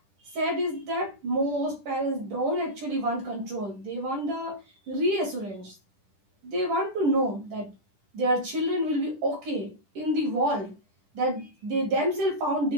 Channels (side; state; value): left; late; 10 ms